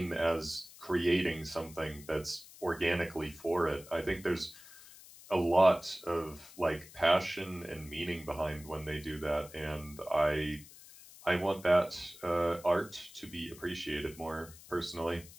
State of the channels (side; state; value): left; noise; hiss, 19 dB below the sound